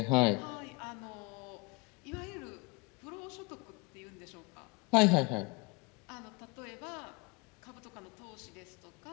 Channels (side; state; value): right; quieter; 28.4 dB